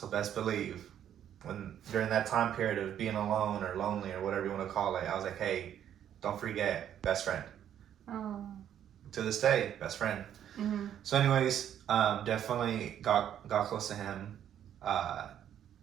best believe, when during that time period of being alone or lonely or whatever you want to call it, I was like, hey, don't forget, best friend. Oh. To this day, best friend. So, anyways, definitely got close to him,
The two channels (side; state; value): left; quieter; 10.1 dB